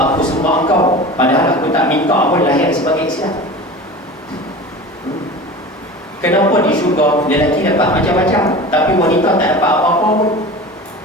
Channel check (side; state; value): both; normal; correlation 0.35